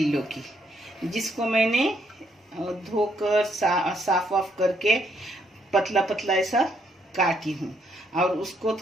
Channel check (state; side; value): normal; both; correlation 0.73